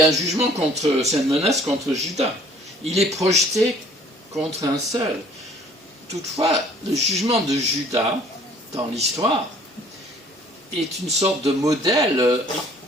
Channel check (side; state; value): both; normal; correlation 0.55